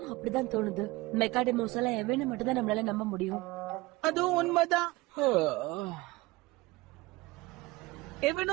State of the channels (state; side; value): quieter; left; 21.2 dB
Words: அப்படிதான் தோணுது. மெக்காடெமோஸ் எல்லாம் எவனை மட்டும் தான் நம்மளால நம்ப முடியும். அதுவும் உண்மைதான்.